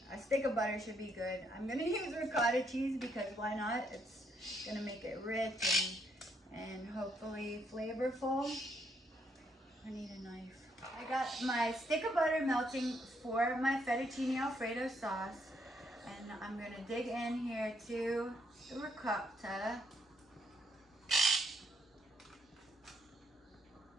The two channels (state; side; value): normal; both; correlation 0.73